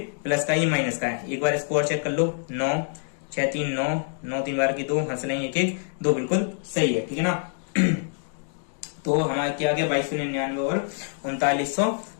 प्लस का, ये माइनस का है। एक बार इसको और चेक कर लो, 9 6 3 9 9 3 बार की 2, हंस लेंगे 1 1 2, बिल्कुल सही है, ठीक है ना। तो हमारा क्या आ गया 2299 और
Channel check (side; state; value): right; silent; digital silence